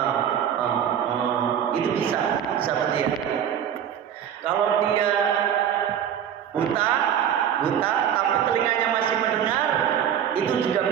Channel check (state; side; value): quieter; left; 9.2 dB